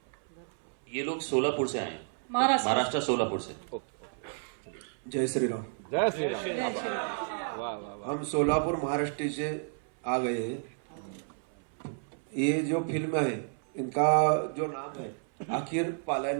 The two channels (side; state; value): left; silent; 57 dB below the other